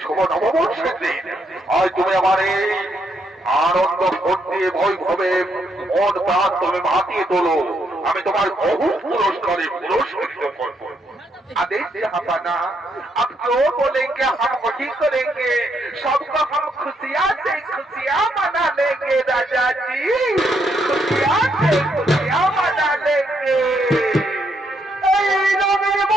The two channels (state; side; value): normal; both; correlation 0.76